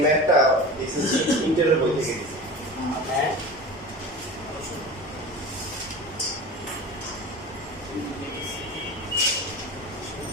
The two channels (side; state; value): both; normal; correlation 0.33